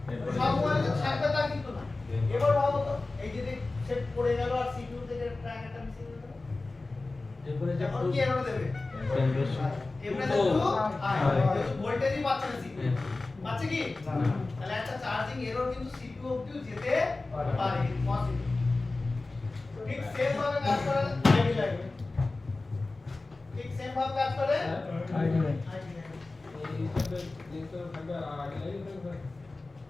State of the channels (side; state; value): right; quieter; 3.3 dB